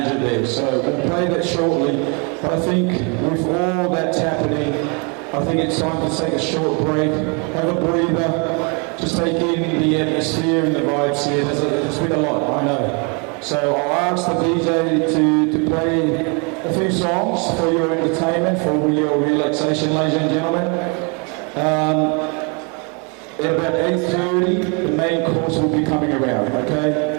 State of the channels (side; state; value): left; quieter; 33.7 dB